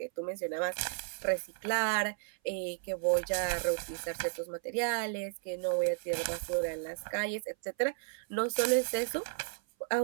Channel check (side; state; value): left; silent; 55 dB below the other